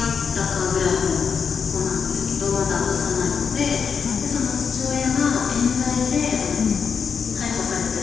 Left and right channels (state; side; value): quieter; right; 6.3 dB